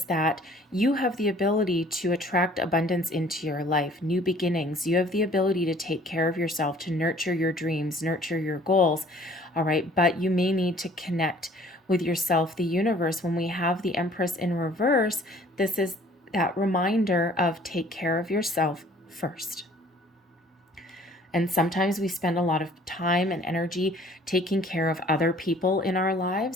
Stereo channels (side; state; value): both; normal; correlation 0.54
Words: that you have the ability to attract abundance into your life, new beginnings. You have the ability to take care of yourself, to nurture your dreams, nurture your goals. All right, but you may need to connect with yourself, the universe. When we have the Empress in reverse, this is that reminder of take care of yourself first. And sometimes we spend a lot of time and energy taking care of other people in our